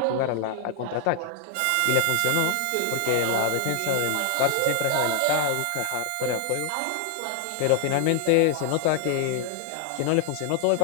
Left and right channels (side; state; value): both; different; correlation 0.00